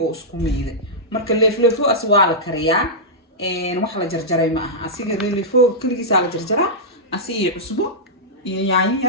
oo isku meeyday marka leefleefo aswaa la kariyaa wax la jarjaray ma aha asiga leefleefo kaligiisa la jarjaraa asiga cusbo iyo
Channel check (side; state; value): both; normal; correlation -0.11